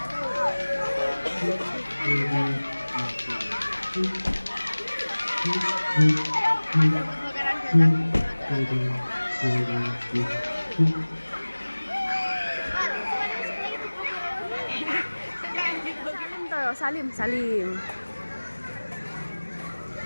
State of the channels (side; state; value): both; inverted; correlation -1.00